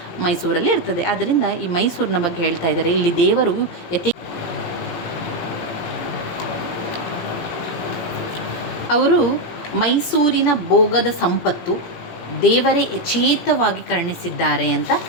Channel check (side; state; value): right; late; 18 ms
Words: ಮೈಸೂರಲ್ಲಿ ಇರ್ತದೆ. ಆದ್ದರಿಂದ ಈ ಮೈಸೂರಿನ ಬಗ್ಗೆ ಹೇಳ್ತಾ ಇದ್ದಾರೆ. ಇಲ್ಲಿ ದೇವರು ಅವರು ಮೈಸೂರಿನ ಭೋಗದ ಸಂಪತ್ತು ದೇವರೇ ಯಚೇತವಾಗಿ ಕರುಣಿಸಿದ್ದಾರೆ ಅಂತ